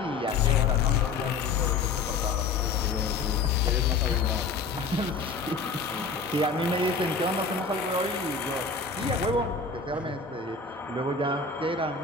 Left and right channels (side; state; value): right; quieter; 4.6 dB